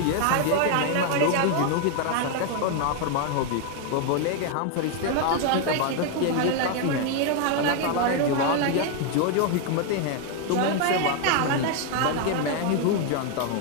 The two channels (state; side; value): different; both; correlation 0.01